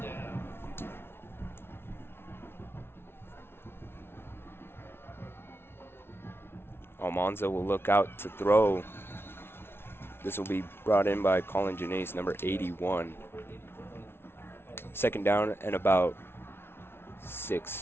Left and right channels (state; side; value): late; right; 0.12 ms